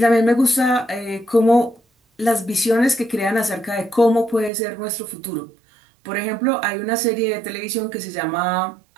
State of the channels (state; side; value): drops out; left; at 4.5 s